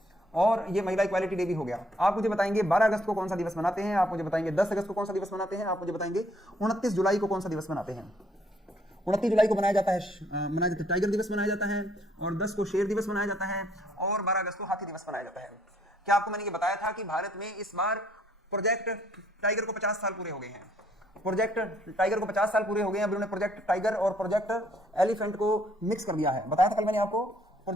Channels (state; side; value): normal; both; correlation 0.66